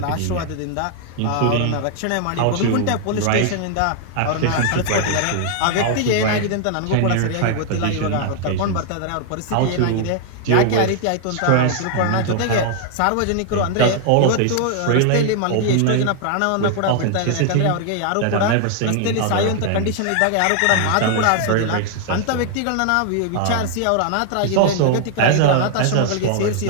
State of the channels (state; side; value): different; both; correlation 0.00